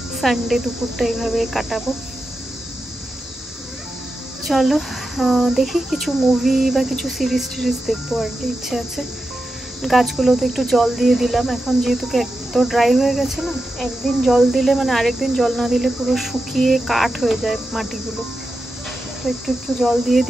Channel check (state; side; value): normal; both; correlation 0.90